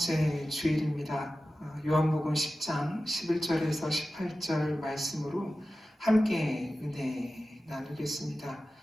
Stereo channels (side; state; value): both; normal; correlation 0.94